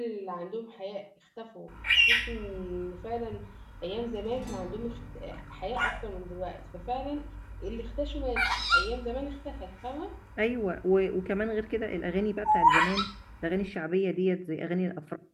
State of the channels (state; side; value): identical; both; correlation 1.00